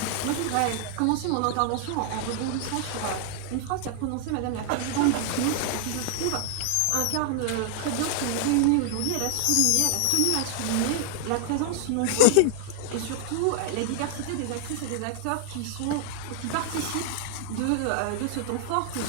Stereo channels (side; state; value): both; different; correlation -0.01